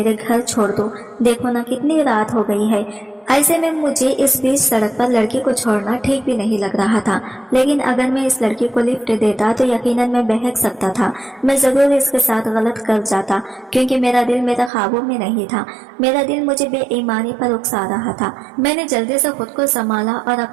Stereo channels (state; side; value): drops out; left; at 14.7 s